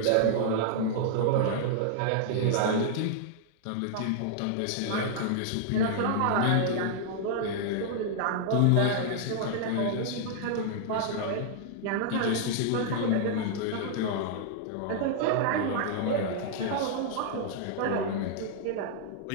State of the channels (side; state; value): both; different; correlation -0.01